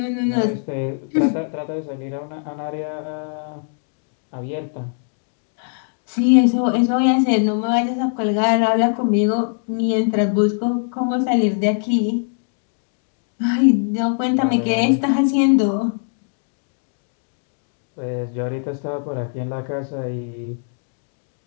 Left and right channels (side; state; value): right; silent; digital silence